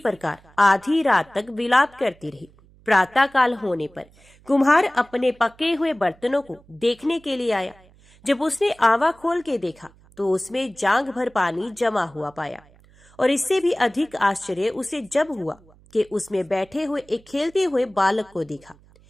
आधी रात तक विलाप करती रही। प्रातः काल होने पर कुम्हार अपने पके हुए बर्तनों को देखने के लिए आया। जब उसने आवा खोल के देखा तो उसमें जांग भर पानी जमा हुआ पाया। और इससे भी अधिक आश्चर्य उसे जब हुआ कि उसमें बैठे हुए एक खेलते हुए बालक को देखा।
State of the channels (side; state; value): right; noise; hum, 28 dB below the sound